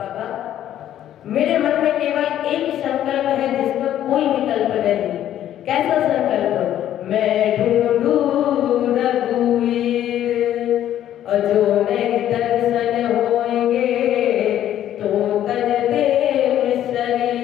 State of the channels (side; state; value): right; quieter; 11.5 dB